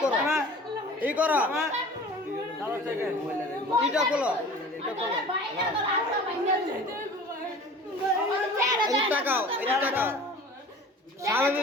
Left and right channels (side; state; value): both; normal; correlation 0.42